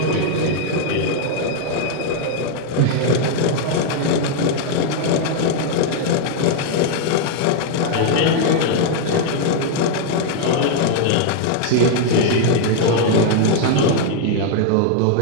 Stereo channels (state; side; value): different; both; correlation 0.00